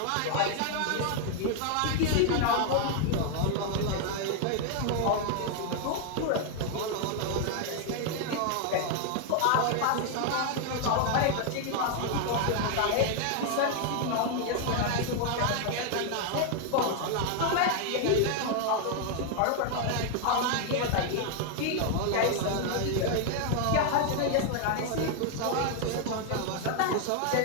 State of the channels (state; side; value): different; both; correlation 0.00